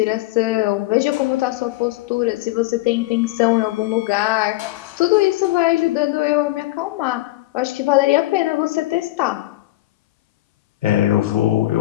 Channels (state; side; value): quieter; right; 18.1 dB